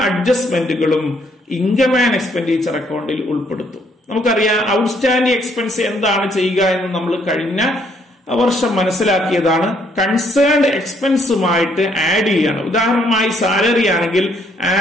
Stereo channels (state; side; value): normal; both; correlation 0.68